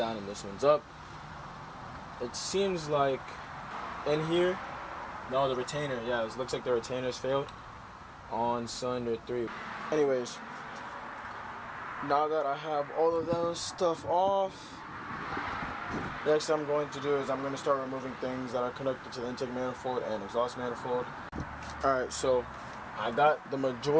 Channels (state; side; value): identical; both; correlation 1.00